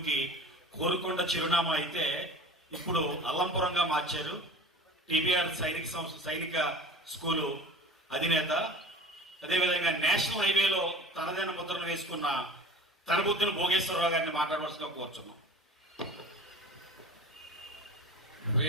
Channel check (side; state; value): both; normal; correlation 0.38